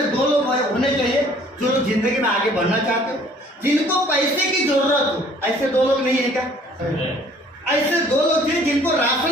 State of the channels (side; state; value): both; normal; correlation 0.56